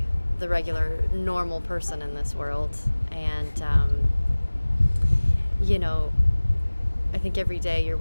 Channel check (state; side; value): inverted; both; correlation -1.00